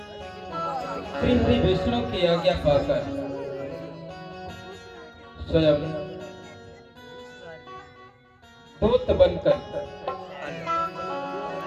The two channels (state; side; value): identical; both; correlation 1.00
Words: श्री हरि विष्णु की आज्ञा पाकर स्वयं दूत बनकर